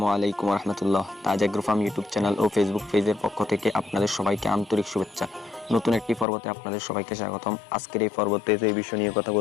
আলাইকুম রহমতুল্লাহ। তাজ agro farm YouTube channel ও Facebook পেজের পক্ষ থেকে আপনাদের সবাইকে আন্তরিক শুভেচ্ছা। নতুন একটি পর্বতে আপনাদের সবাইকে স্বাগতম। আজকের এই পর্বতে যে বিষয় নিয়ে কথা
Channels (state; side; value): drops out; right; at 6.2 s